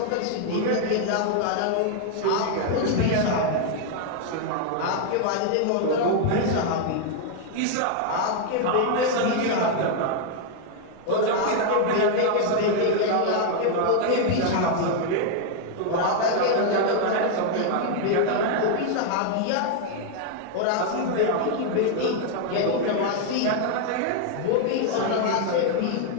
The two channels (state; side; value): different; both; correlation 0.00